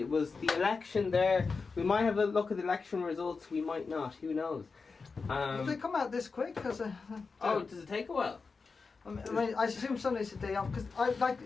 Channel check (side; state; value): right; quieter; 4.6 dB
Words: It was the election there. We might have a look at the election results. We might not. Who knows? Did they come out this quick? Does it take a while? I mean, I assume Sunday's the day off